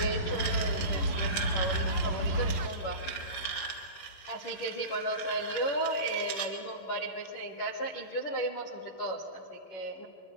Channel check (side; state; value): right; late; 11 ms